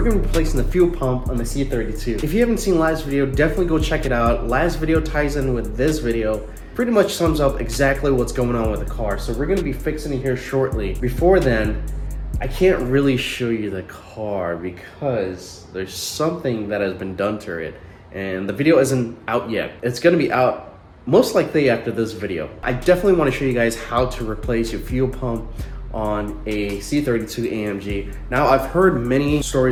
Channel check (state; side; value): identical; both; correlation 1.00